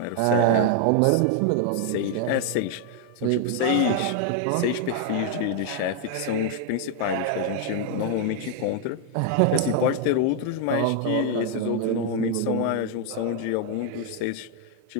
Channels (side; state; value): both; different; correlation 0.00